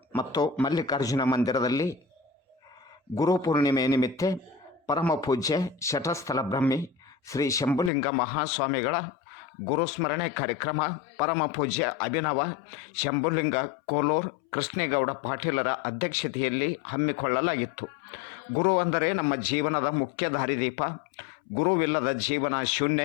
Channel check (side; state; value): right; drops out; at 7.9 s